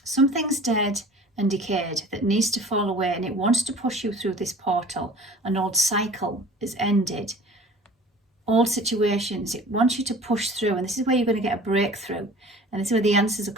Something's dead and decayed that needs to fall away, and it wants to push you through this portal. An old cycle is ended. Old situations, it wants you to push through, and this is where you're going to get a breakthrough, and this is where the answers are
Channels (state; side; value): normal; both; correlation 0.45